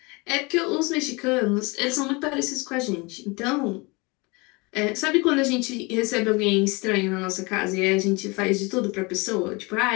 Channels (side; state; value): right; quieter; 27.0 dB